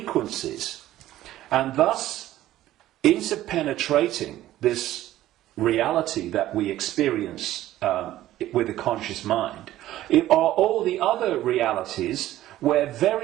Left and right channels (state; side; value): quieter; left; 14.3 dB